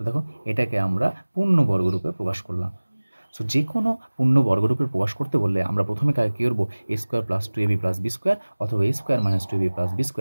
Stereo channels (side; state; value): both; inverted; correlation -1.00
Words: দেখো এটাকে আমরা পূর্ণ বর্গরূপে প্রকাশ করলাম। সো যে কোনো পূর্ণ বর্গরূপে প্রকাশ করতে বললে আমরা প্রথমে কাকে কী করবো, A square plus 2ab plus B square অথবা A square minus 2ab plus B